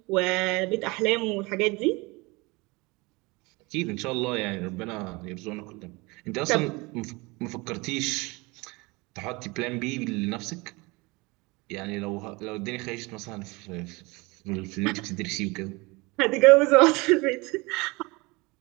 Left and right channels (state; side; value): quieter; left; 25.0 dB